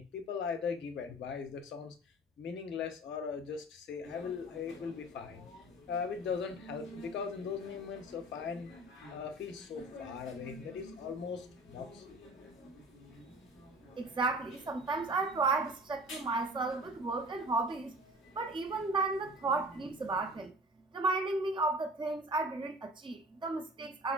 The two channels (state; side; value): normal; both; correlation 0.42